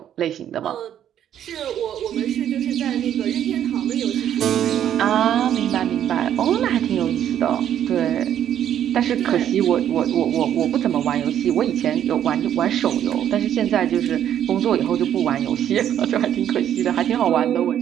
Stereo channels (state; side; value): quieter; left; 10.3 dB